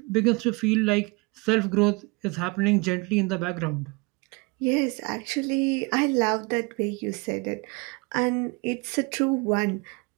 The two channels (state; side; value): quieter; left; 27.6 dB